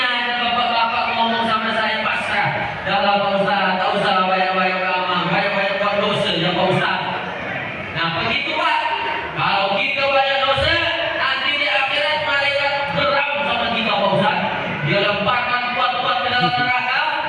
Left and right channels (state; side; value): identical; both; correlation 1.00